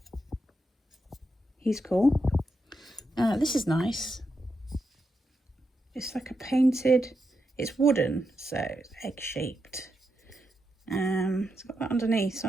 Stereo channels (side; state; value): both; normal; correlation 0.85